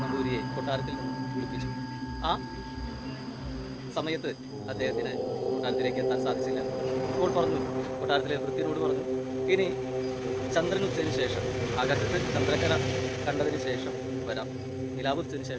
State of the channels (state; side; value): identical; both; correlation 1.00